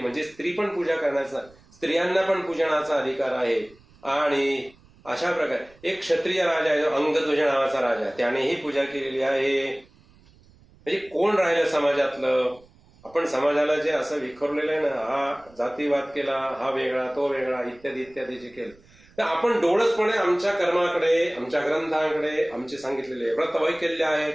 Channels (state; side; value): noise; right; rumble, 28 dB below the sound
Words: म्हणजे स्त्री पण पूजा करण्याचा, स्त्रियांना पण पूजनाचा अधिकार आहे. आणि अशा प्रकारे एक क्षत्रिय राजा आहे, अंगध्वज नावाचा राजा, त्यानेही पूजा केलेली आहे. म्हणजे कोण राहिलं समाजातलं? आपण समाजाला जे असं विखरलेलं आहे ना, हा जातीवाद केला, हा वेगळा, तो वेगळा, इत्यादी इत्यादी जे केलं, तर आपण डोळसपणे आमच्या कर्माकडे, आमच्या ग्रंथांकडे, आमचे सांगितलेले व्रत वैकल्य